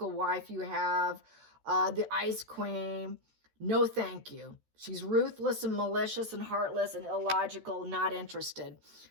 wife you have. The Ice Queen. No, thank you. She's ruthless and malicious and heartless and illogical, not interested.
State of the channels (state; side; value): late; left; 13 ms